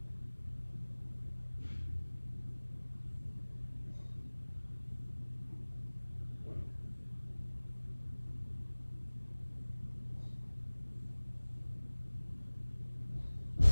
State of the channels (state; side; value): inverted; both; correlation -1.00